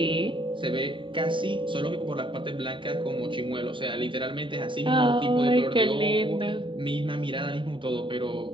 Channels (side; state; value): left; late; 0.24 ms